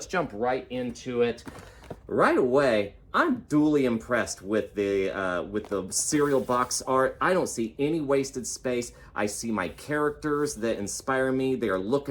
jump right into it. Right away, I'm duly impressed with the cereal box art. I don't see any wasted space. I see my characters that inspire me. They are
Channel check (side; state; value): both; identical; correlation 1.00